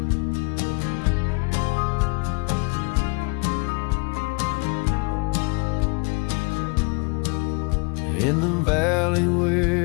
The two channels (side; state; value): right; quieter; 31.7 dB